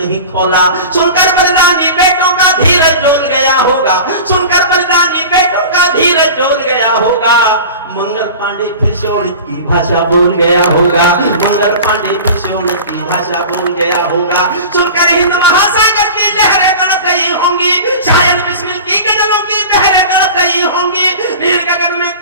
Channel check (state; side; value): inverted; both; correlation -0.35